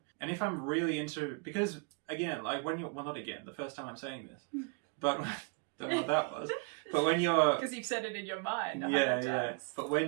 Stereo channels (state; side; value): quieter; left; 33.7 dB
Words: And if I'm really into, because again, like when you're, well, not again, the first time I'm saying this, but don't know what that was. But when you're, because you've said it in your mind. Yeah. But